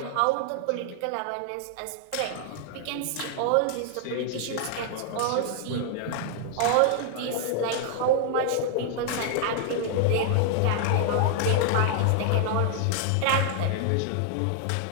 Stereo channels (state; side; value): different; both; correlation 0.00